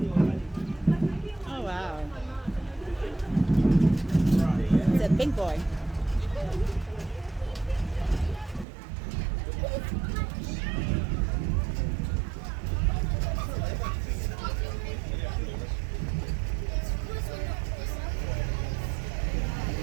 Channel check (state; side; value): drops out; left; at 8.7 s